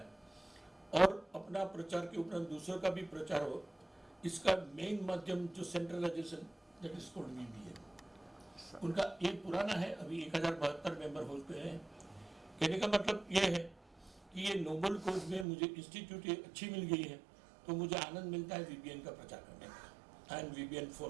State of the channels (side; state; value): left; drops out; at 15.5 s